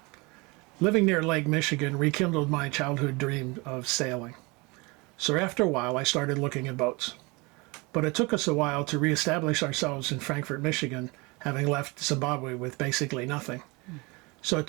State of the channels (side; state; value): left; quieter; 26.5 dB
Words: Living near Lake Michigan rekindled my childhood dream of sailing. So after a while, I started looking at boats. But it took us a while to reestablish ourselves in Frankfort, Michigan, having left Zimbabwe with basically nothing. So it